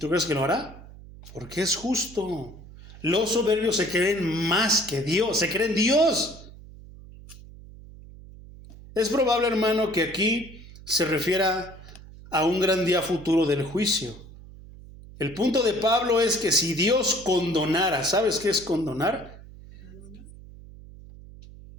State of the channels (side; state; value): right; noise; hum, 18 dB below the sound